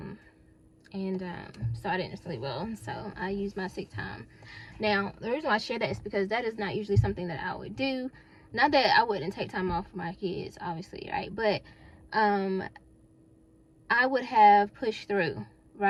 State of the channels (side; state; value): both; identical; correlation 1.00